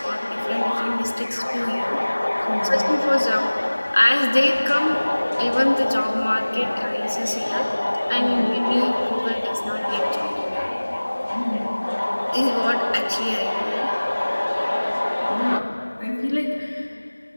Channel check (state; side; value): inverted; both; correlation -1.00